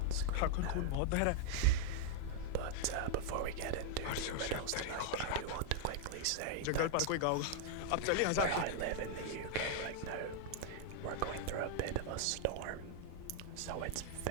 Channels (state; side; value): different; both; correlation 0.00